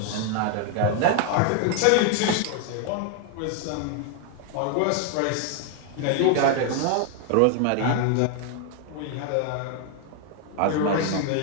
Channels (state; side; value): different; both; correlation 0.00